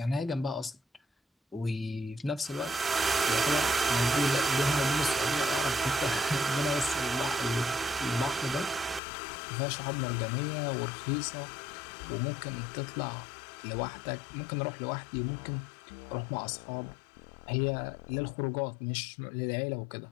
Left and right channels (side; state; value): right; drops out; at 9.0 s